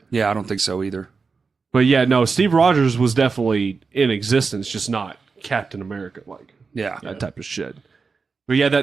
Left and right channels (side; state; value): left; quieter; 4.8 dB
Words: Yeah, I don't think so either. But yeah, no, Steve Rogers was definitely in existence, just not Captain America, like Yeah. that type of shit. But yeah,